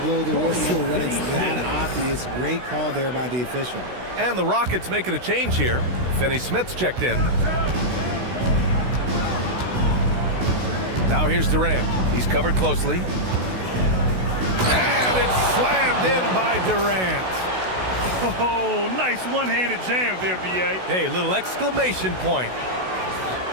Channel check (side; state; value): left; late; 16 ms